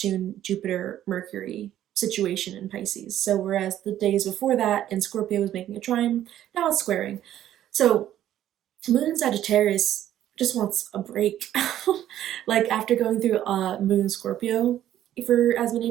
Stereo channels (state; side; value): quieter; left; 12.0 dB